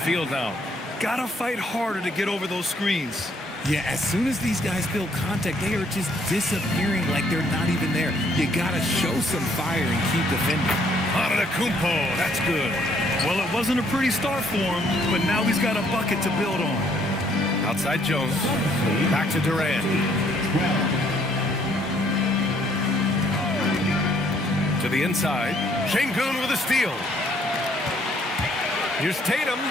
now. Gotta fight harder to get over those screens. Yeah, as soon as these guys feel contact, they are just disappearing like they're not even there. You gotta show some fire and keep defending. Antetokounmpo, that's good. Well, it wasn't a pretty start for him, but now he's got a bucket to build on. Outside Jones. Back to Durant. To the inside. Şengün with a steal. Here's Tatum.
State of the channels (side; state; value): both; normal; correlation 0.66